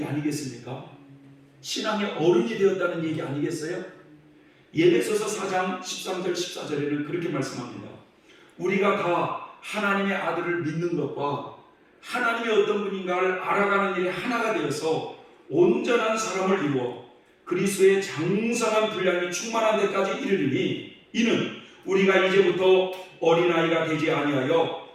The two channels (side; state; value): both; identical; correlation 1.00